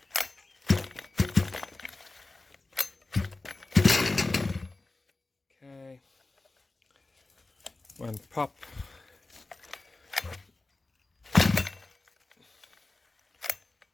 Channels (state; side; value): quieter; right; 3.2 dB